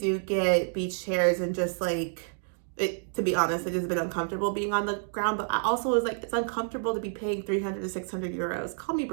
get beach chairs and just, like, to be honest, it has been uncomfortable being on the ground. But I also was like, it's uncomfortable to be paying 300 to 600 euros. Call me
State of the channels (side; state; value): left; silent; digital silence